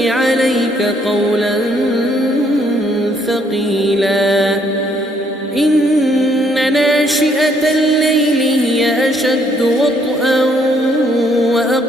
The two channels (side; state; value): both; normal; correlation 0.68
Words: عليك قولا ثقيلا إن ناشئة الليل هي أشد وطئا